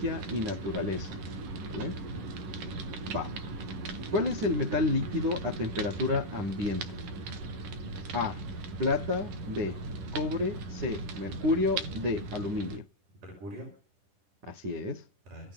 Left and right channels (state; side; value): late; left; 10 ms